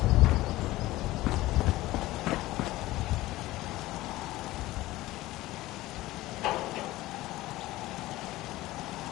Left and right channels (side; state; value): right; quieter; 17.5 dB